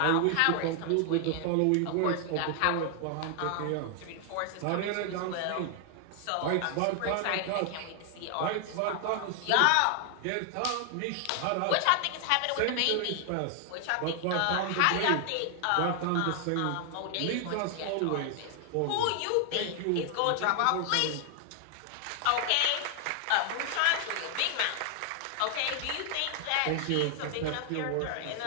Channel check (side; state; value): both; different; correlation 0.00